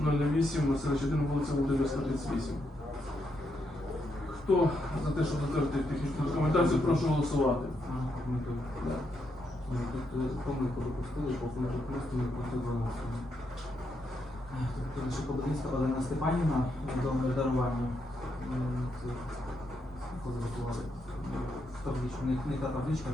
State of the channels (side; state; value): both; normal; correlation 0.80